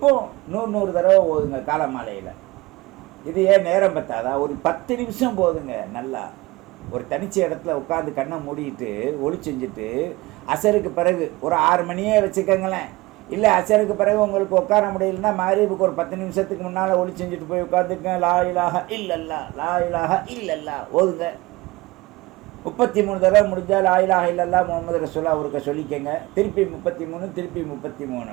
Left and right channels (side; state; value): left; quieter; 21.1 dB